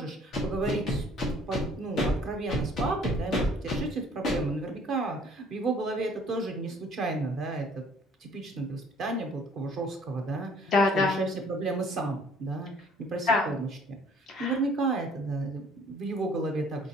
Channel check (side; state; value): both; normal; correlation 0.57